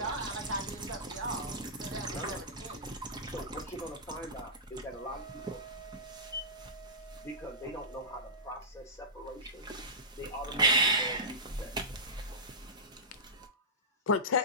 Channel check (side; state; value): both; normal; correlation -0.17